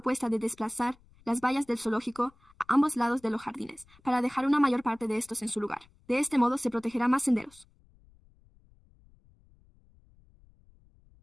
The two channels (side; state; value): left; noise; rumble, 29 dB below the sound